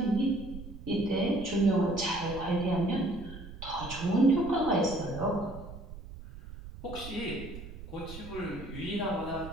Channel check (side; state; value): right; noise; rumble, 13 dB below the sound